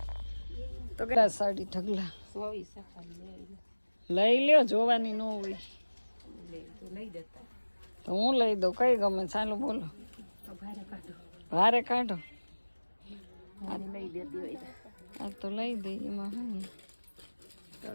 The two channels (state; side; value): inverted; both; correlation -1.00